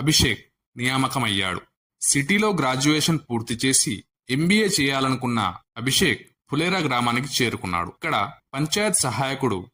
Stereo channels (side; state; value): both; identical; correlation 1.00